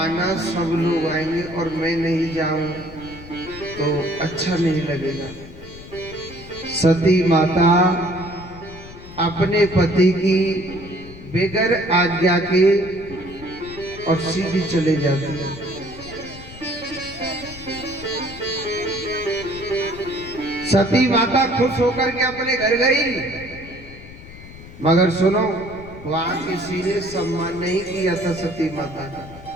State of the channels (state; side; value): noise; left; rumble, 16 dB below the sound